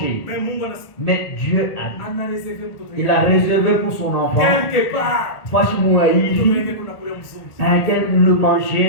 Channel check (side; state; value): right; late; 1.3 ms